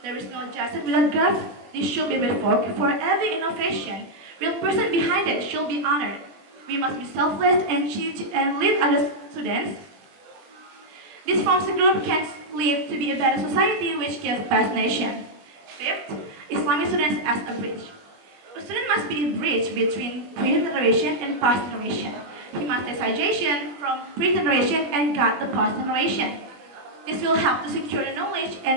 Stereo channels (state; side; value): late; left; 21 ms